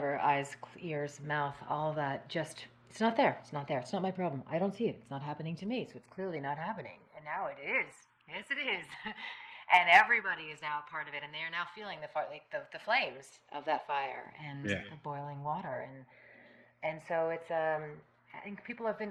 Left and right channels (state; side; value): identical; both; correlation 1.00